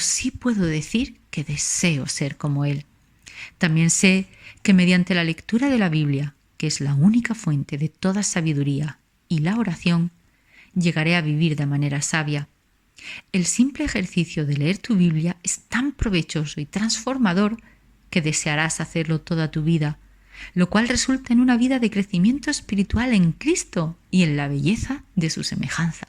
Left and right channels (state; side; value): identical; both; correlation 1.00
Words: puedo decir que deseo ser como Él. También sé que mediante la lectura de la Biblia, que es la única fuente de toda sabiduría, y la oración, llegaré a vivir de manera sabia. El simple ejercicio de leer tu Biblia es tan provechoso y transformador que desearás hacerlo toda tu vida, lo cual resulta en una vida de crecimiento espiritual en Cristo y en la belleza de su semejanza.